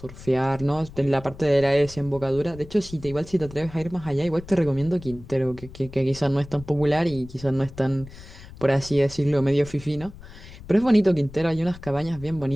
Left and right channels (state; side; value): noise; left; rumble, 17 dB below the sound